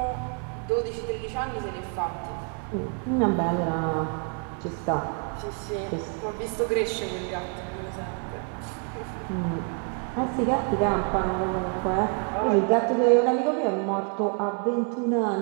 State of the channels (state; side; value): quieter; left; 38.9 dB